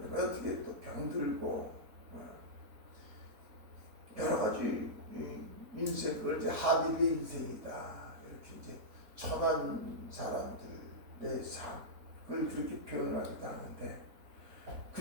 어떻게 또 병들고 여러 가지 인생, 그걸 이제 하빌의 인생이다 이렇게 이제 천한 사람들의 삶을 그렇게 표현하기도 하는데,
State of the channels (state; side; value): late; left; 4.1 ms